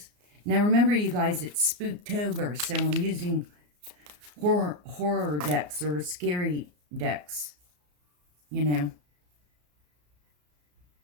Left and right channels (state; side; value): late; left; 34 ms